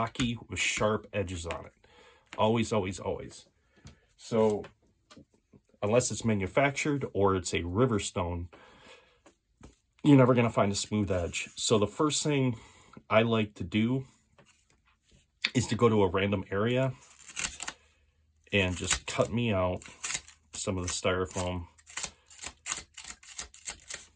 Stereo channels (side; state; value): both; identical; correlation 1.00